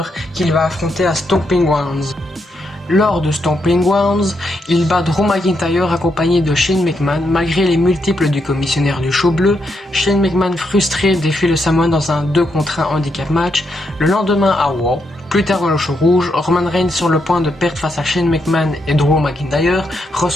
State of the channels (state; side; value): normal; both; correlation 0.80